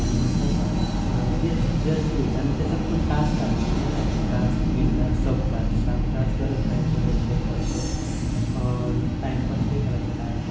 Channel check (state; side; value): identical; both; correlation 1.00